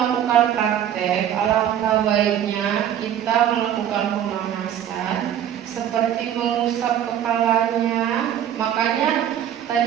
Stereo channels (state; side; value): quieter; left; 10.3 dB